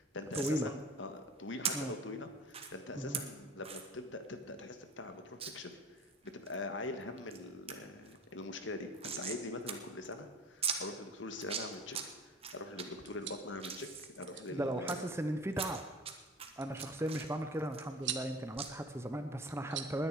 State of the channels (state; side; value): normal; both; correlation 0.40